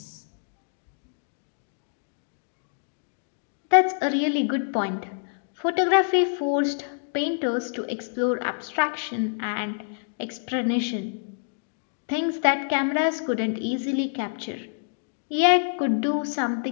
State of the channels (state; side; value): silent; right; digital silence